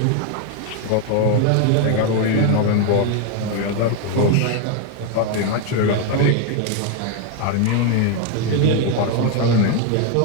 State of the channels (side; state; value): both; different; correlation 0.01